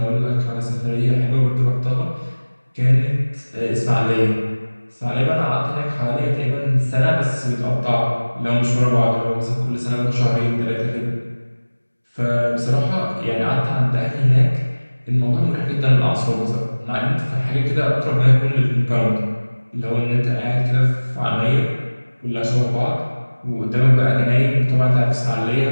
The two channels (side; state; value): both; inverted; correlation -1.00